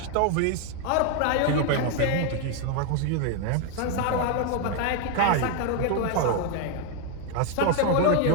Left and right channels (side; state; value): both; different; correlation 0.01